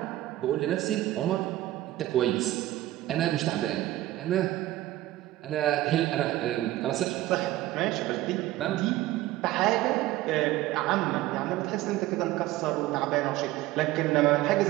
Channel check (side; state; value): left; quieter; 15.8 dB